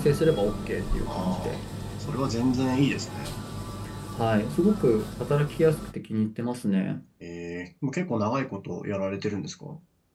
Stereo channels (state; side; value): identical; both; correlation 1.00